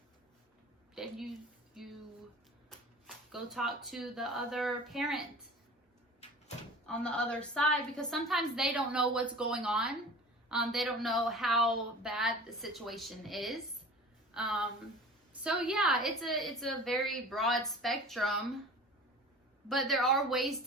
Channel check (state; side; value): normal; both; correlation 0.40